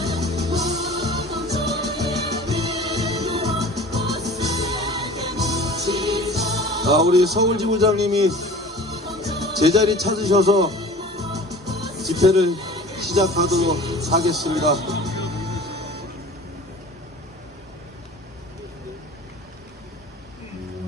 우리 서울지부장님이 제자리 찾으셔서 집회를 시작하도록 하겠습니다.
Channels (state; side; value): normal; both; correlation 0.41